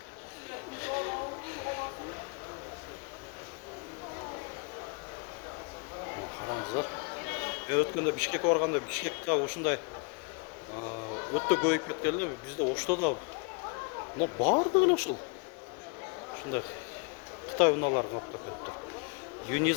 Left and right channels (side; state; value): right; quieter; 34.3 dB